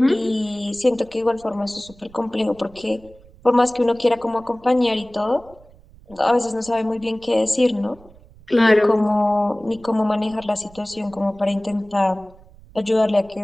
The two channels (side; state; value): right; noise; rumble, 24 dB below the sound